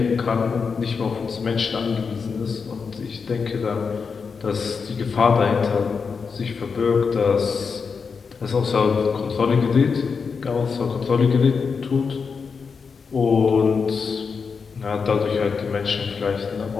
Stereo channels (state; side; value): quieter; right; 5.4 dB